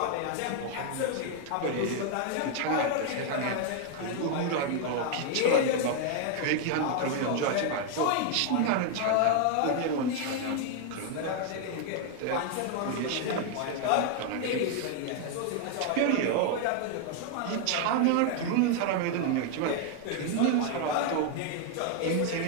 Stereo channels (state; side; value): different; both; correlation 0.00